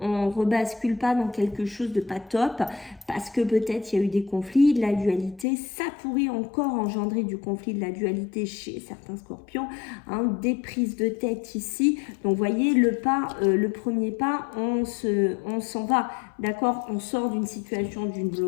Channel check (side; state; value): right; drops out; at 5.5 s